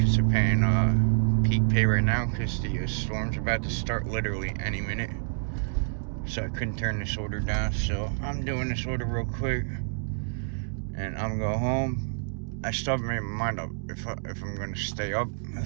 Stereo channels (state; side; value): silent; left; digital silence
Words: they're paying peak pay right now because the storm's about to start literally any minute. So I couldn't turn this order down. So I'm doing this order real quick. And I'm going to go home. I still haven't made my mind up if I'm going to stay up